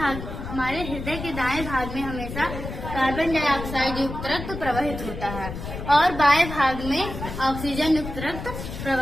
हमारे हृदय के दाएं भाग में हमेशा कार्बन डाइऑक्साइड युक्त रक्त प्रवाहित होता है और बाएं भाग में ऑक्सीजन युक्त रक्त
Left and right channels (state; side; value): noise; left; rumble, 8 dB below the sound